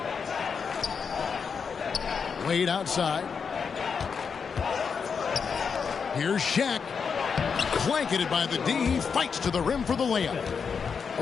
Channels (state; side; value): quieter; right; 6.0 dB